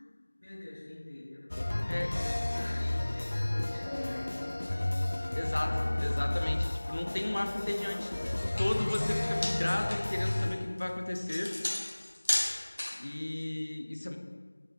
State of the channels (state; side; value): inverted; both; correlation -1.00